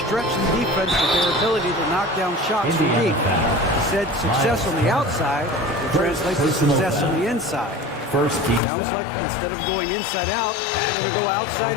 the defense with their ability to knock down shots from deep. He said success on the outside will translate to success on the inside. First team. Sounds like instead of going inside out, they're going to go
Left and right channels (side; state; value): right; drops out; at 8.6 s